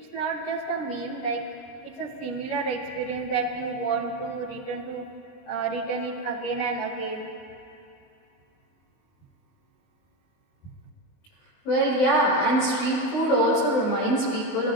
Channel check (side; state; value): right; late; 23 ms